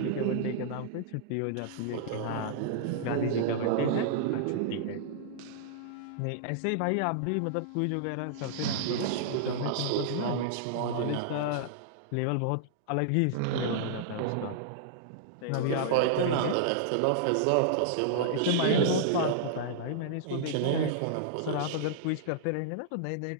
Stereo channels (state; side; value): different; both; correlation -0.02